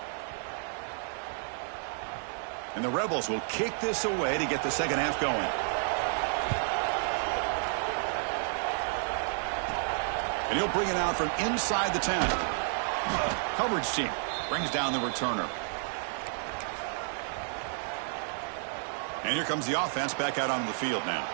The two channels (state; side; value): silent; left; 57 dB below the other